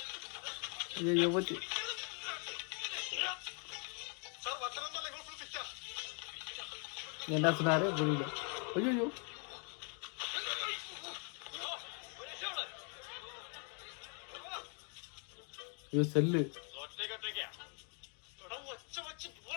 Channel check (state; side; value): quieter; right; 39.4 dB